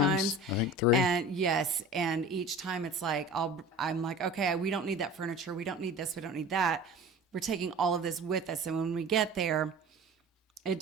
I think 3. And yes, and each time it's like I'm like, okay, we don't need that furniture. We don't need this. We don't need that. We're taking all of this with us, and when we get there, it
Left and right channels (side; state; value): both; normal; correlation 0.39